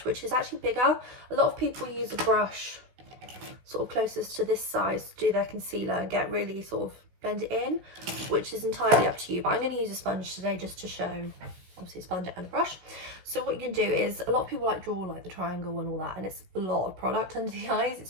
which is actually bigger. A lot of people use a brush sort of closest to this size to do their concealer and get really sort of blend it in, which is entirely up to you, but I'm going to use a sponge today just to show, obviously, a sponge and a brush. So what you can do is, a lot of people like draw like the triangle and all that, and it's a lot of product under the eyes.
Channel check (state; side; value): late; left; 16 ms